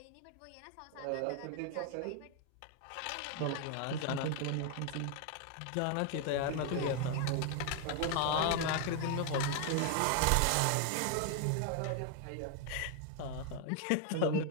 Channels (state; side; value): different; both; correlation 0.00